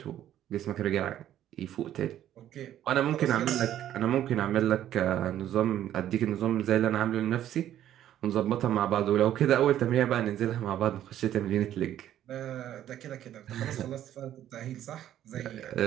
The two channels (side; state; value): left; quieter; 11.7 dB